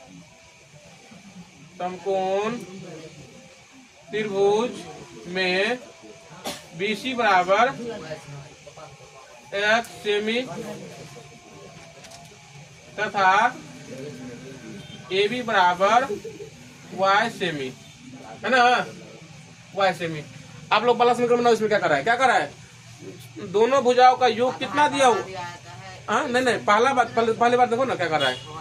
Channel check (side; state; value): both; identical; correlation 1.00